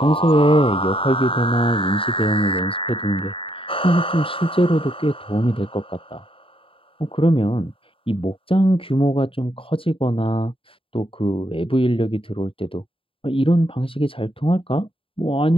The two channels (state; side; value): late; right; 0.26 ms